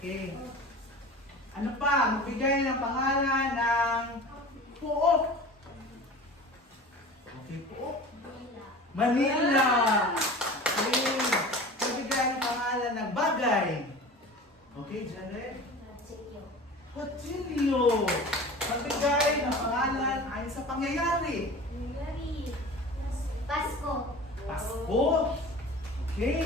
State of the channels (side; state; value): both; normal; correlation 0.37